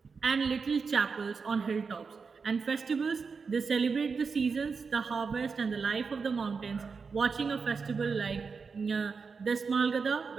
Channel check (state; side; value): quieter; left; 5.1 dB